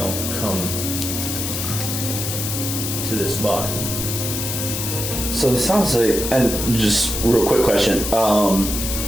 come to this body. So it sounds like, and just real quick question,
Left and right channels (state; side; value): noise; left; hiss, 3 dB below the sound